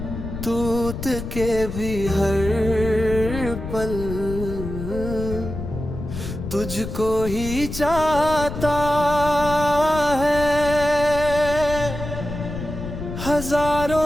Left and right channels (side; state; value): left; noise; rumble, 7 dB below the sound